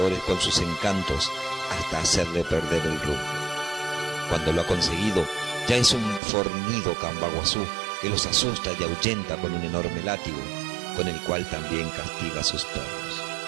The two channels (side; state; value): left; drops out; at 6.2 s